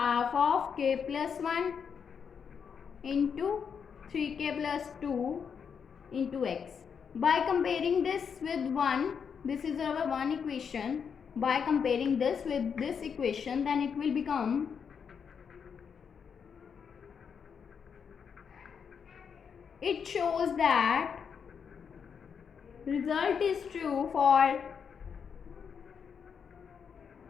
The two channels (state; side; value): quieter; right; 6.8 dB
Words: of k plus 1 into 3k plus 2 into x. By comparing this with 1, this is our one equation. By comparing this with this equation, then it will become it shows that result is true for